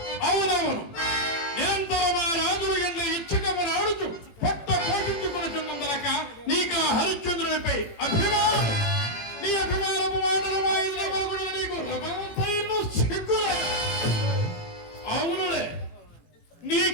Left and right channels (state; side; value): late; right; 18 ms